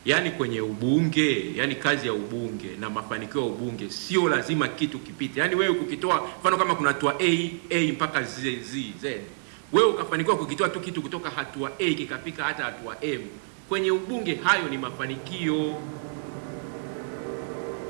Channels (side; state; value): left; silent; digital silence